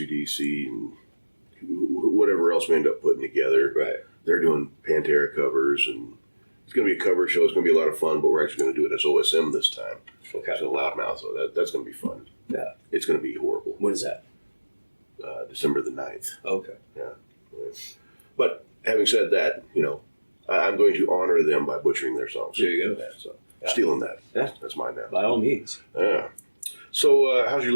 and whatever else we end up putting together. Right. They're doing Pantera covers, and it's going to be a cover show. It's going to be a lot of fun, but we're actually going to do it as OSM this time. Okay. So Loudmouth, so that's going to be fun. Yeah. It's going to be horrible. When is that? December the 9th. Okay. Yeah. But having said that, I'm going to honor them by butchering their songs. There you go. So stealing that. Yeah. That's mine now. By all means. Yeah. So how's your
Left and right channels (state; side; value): inverted; both; correlation -1.00